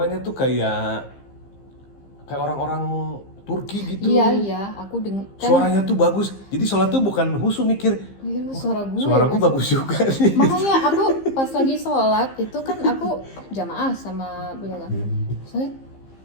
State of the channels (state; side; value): late; right; 15 ms